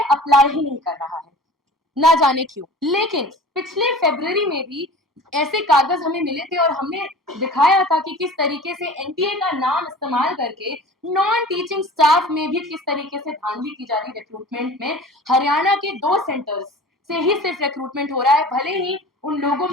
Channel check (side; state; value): both; normal; correlation 0.40